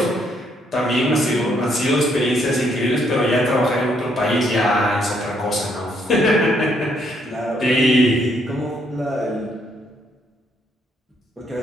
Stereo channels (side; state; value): both; normal; correlation 0.71